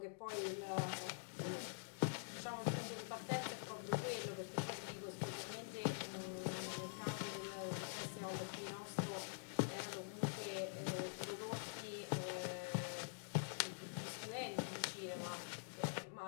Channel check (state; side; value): silent; right; digital silence